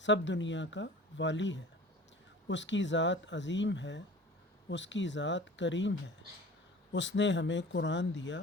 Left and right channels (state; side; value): normal; both; correlation 0.42